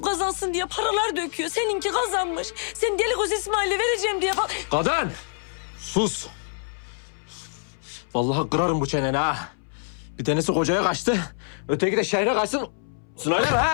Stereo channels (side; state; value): right; silent; 61 dB below the other